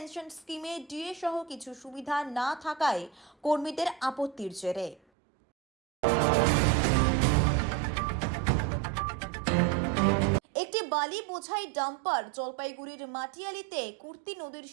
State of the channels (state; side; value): drops out; left; at 5.0 s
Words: স্কিমে ডিএ সহ কিছু সুবিধা না থাকায় কর্মীদের আপত্তির জেরে। একটি বালি বোঝাই ডাম্পার জলপাইগুড়ির মাটিয়ালিতে কুর্তি নদীর